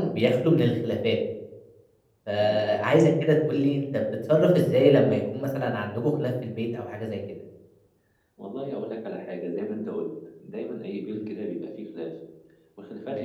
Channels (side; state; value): both; identical; correlation 1.00